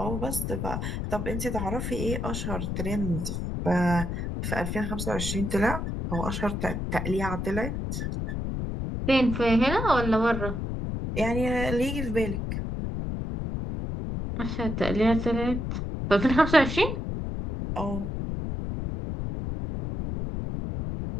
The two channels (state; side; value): noise; left; rumble, 3 dB below the sound